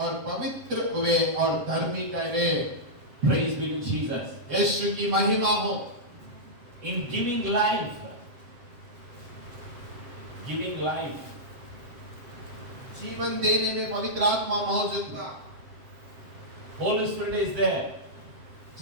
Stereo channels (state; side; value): late; left; 7.5 ms